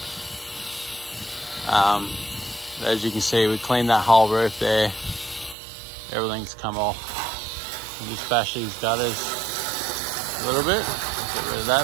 As you can see, we cleaned that whole roof there. Everything's come off. We'll just bash these gutters a little bit. Get rid of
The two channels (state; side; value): drops out; left; at 5.6 s